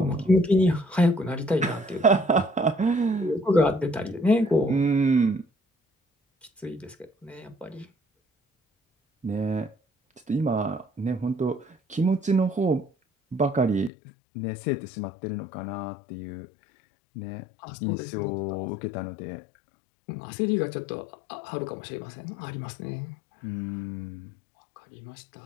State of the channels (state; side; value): drops out; right; at 13.9 s